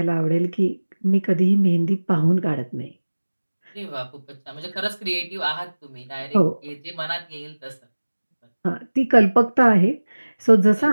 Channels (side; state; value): both; inverted; correlation -1.00